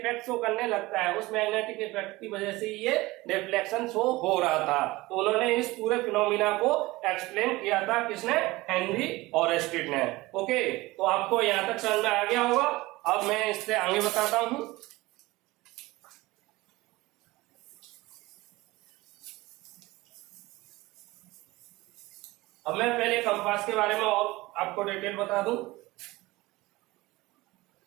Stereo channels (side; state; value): left; quieter; 20.3 dB